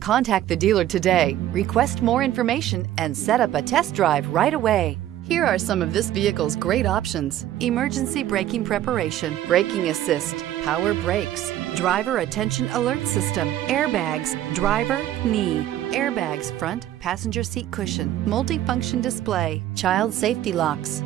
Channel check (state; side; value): quieter; left; 12.7 dB